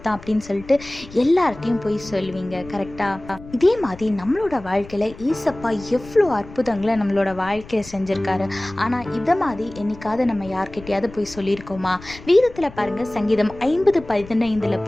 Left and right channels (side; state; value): left; noise; rumble, 17 dB below the sound